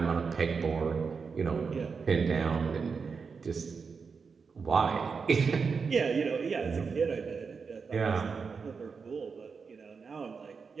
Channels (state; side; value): quieter; left; 5.4 dB